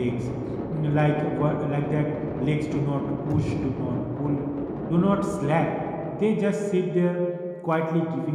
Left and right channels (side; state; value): both; identical; correlation 1.00